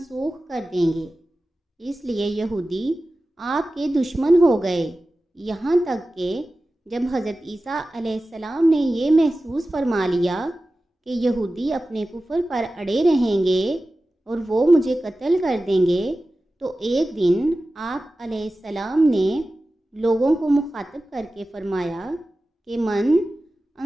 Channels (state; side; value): normal; both; correlation 0.95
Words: کر دیں گے، اس لیے یہودی آپ کے دشمن ہو گئے، یہاں تک کہ جب حضرت عیسیٰ علیہ السلام نے یہ محسوس فرما لیا کہ یہودی اپنے کفر پر اڑے رہیں گے اور وہ مجھے قتل کر دیں گے، تو ایک دن آپ علیہ السلام نے لوگوں کو مخاطب کر کے فرمایا کہ من